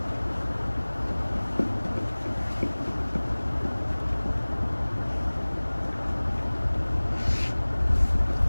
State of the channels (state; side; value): inverted; both; correlation -1.00